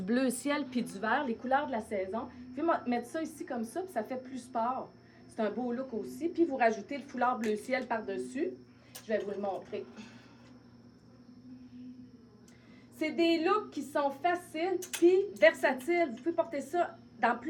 bleu ciel puis du vert, les couleurs de la saison. Vous pouvez mettre ça ici comme ça, puis ça fait plus sport. C'est un beau look aussi. Puis vous rajoutez le foulard bleu ciel par-dessus. Je vais vous le montrer. C'est des looks qui sont faciles puis versatiles. Vous pouvez porter ça dans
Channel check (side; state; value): both; identical; correlation 1.00